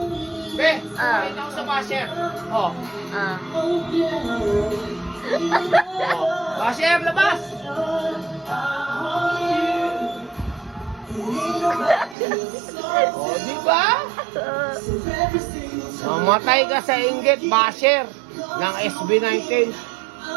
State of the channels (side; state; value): left; drops out; at 12.2 s